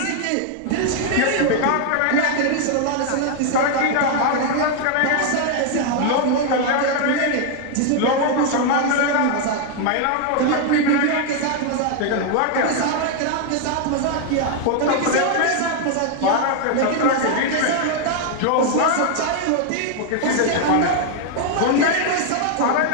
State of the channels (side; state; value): both; different; correlation 0.00